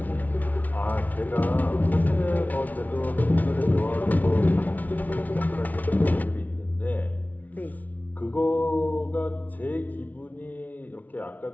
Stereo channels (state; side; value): late; right; 0.076 ms